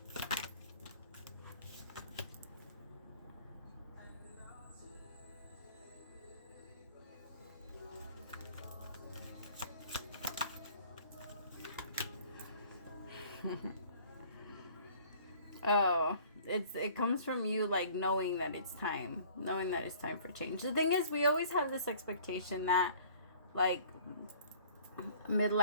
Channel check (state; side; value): inverted; both; correlation -0.52